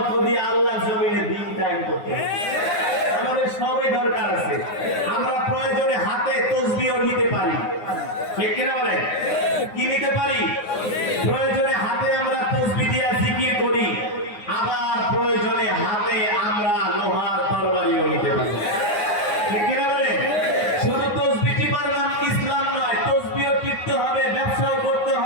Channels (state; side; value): late; right; 9.6 ms